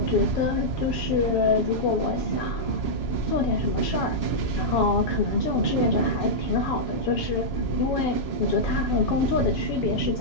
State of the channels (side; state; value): right; late; 7.1 ms